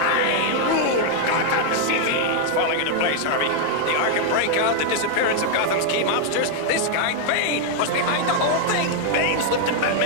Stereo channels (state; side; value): different; both; correlation 0.00